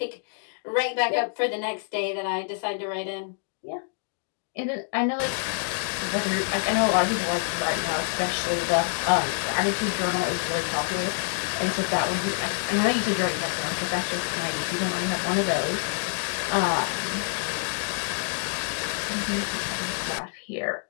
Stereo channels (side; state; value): right; silent; digital silence